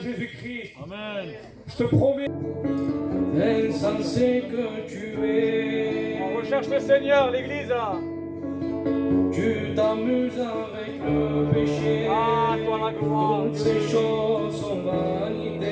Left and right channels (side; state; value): both; identical; correlation 1.00